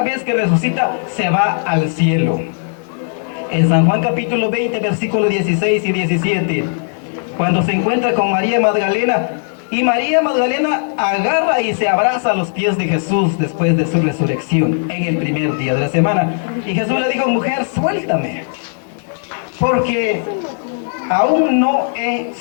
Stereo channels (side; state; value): right; silent; digital silence